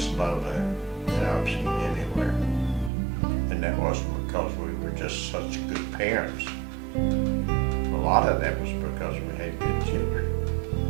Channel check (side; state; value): left; drops out; at 2.9 s